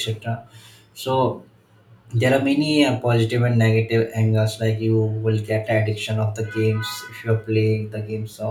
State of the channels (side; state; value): both; identical; correlation 1.00